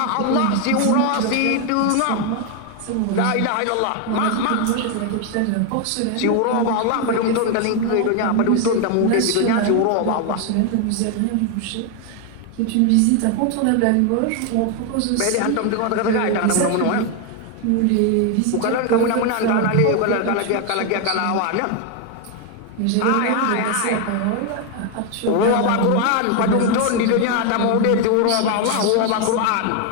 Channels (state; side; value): different; both; correlation 0.01